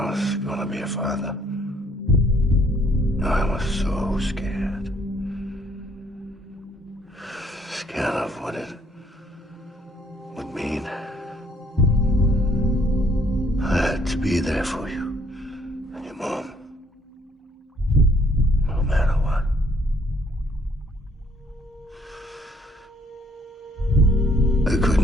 was gonna be a father, I was so scared. Scared of what it would mean. I had to be there for you and your mom, no matter what. I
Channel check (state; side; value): normal; both; correlation 0.64